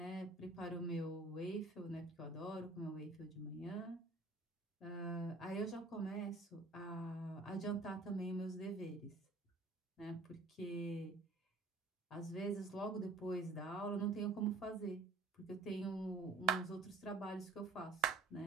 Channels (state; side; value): quieter; left; 3.5 dB